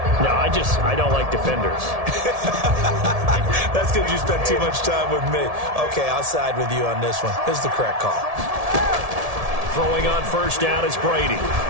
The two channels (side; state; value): left; late; 1.7 ms